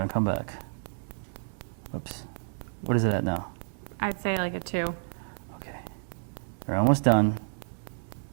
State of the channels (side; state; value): left; silent; digital silence